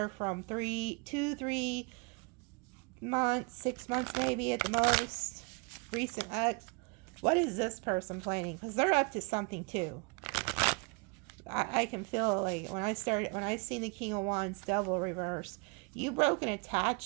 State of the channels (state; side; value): quieter; left; 31.4 dB